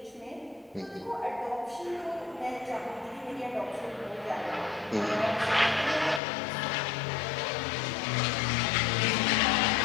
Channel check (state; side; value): drops out; right; at 6.2 s